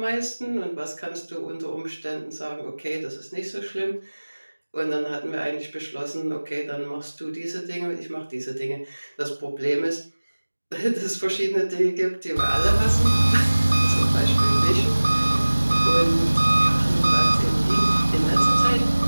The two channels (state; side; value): inverted; both; correlation -1.00